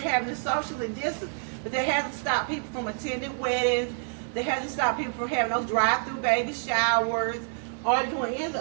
having it socially distanced. But that hasn't stopped people from attending weddings. That hasn't stopped people from having those drive-through baby showers or doing any of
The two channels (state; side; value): silent; left; 60 dB below the other